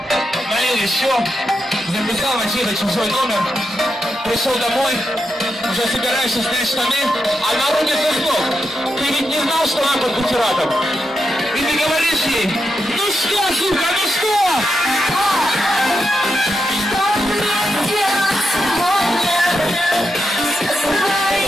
налил еще, записал на чей-то чужой номер, пришел домой, уже собираешься снять штаны, а на руке звонок. Ты ведь не знал, что она под бутератом? И ты говоришь ей: ну что, сука, ну что? Что мне делать сегодня со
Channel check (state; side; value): normal; both; correlation 0.85